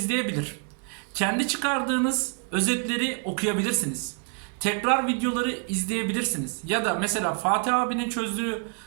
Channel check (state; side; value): quieter; left; 37.6 dB